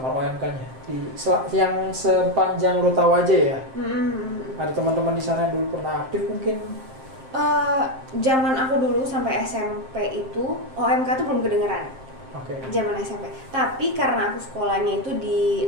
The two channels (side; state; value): left; late; 7.6 ms